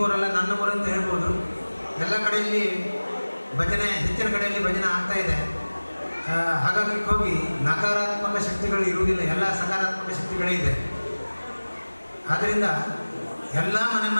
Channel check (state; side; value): inverted; both; correlation -1.00